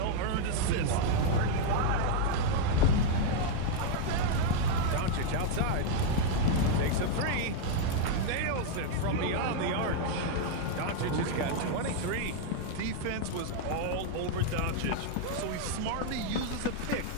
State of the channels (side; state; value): both; different; correlation 0.00